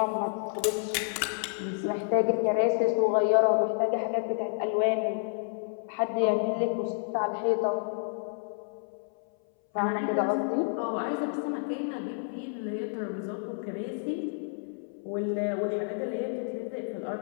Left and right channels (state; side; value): silent; right; 58 dB below the other